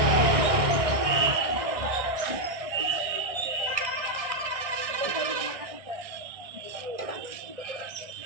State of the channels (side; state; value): left; late; 1.6 ms